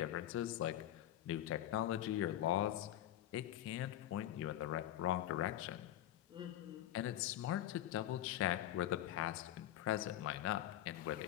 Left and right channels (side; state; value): right; quieter; 12.6 dB